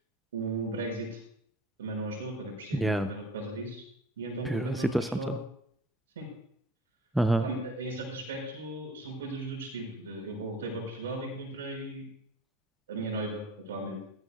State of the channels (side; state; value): both; normal; correlation 0.47